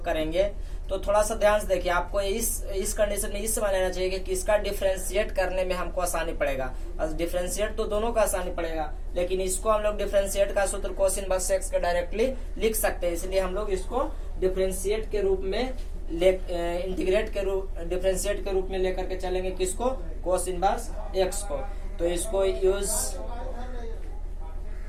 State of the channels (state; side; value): identical; both; correlation 1.00